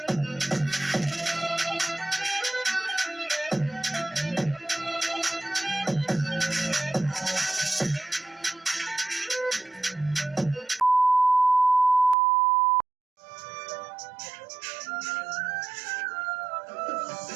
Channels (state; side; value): drops out; left; at 12.2 s